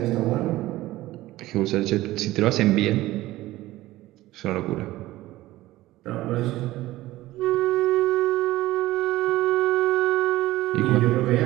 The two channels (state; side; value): quieter; left; 16.9 dB